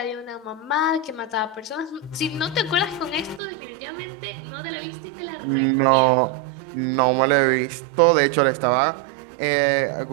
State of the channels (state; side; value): drops out; left; at 3.4 s